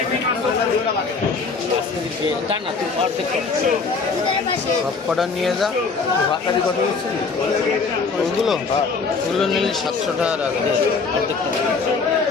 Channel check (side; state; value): right; quieter; 4.6 dB